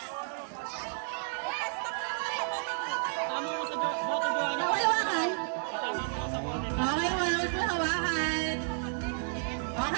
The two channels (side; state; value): left; silent; digital silence